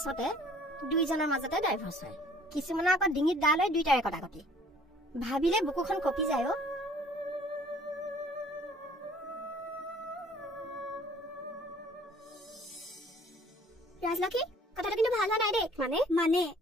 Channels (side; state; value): both; normal; correlation 0.55